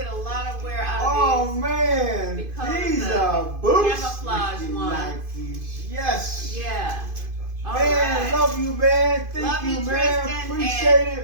a lot of wear out Oh of these. man, because these the are boots. camouflage ones. Nikes. Yes. Yeah. All Man, right. love you, man. Thank Love you, man. Tristan, Appreciate and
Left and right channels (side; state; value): left; late; 2.5 ms